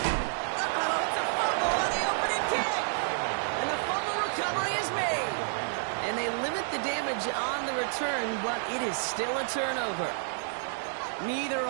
Uh-oh, it's a fumble on the opening kick. And the fumble recovery is made. And they limit the damage on the return, but it is still a turnover. Neither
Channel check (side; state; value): left; silent; 55 dB below the other